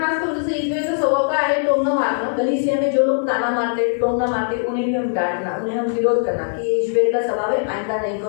करून जसं इजबेलचा स्वभाव काय आहे, टोमणं मारणं। कलीसिया में जो लोग ताना मारते, टोना मारते, उन्हें भी हम डांटना, उन्हें हम विरोध करना कि ये इजबेल का स्वभाव है, आइंदा नहीं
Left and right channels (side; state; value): right; silent; digital silence